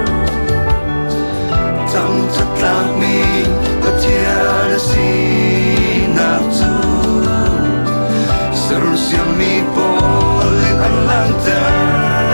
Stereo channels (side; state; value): both; inverted; correlation -1.00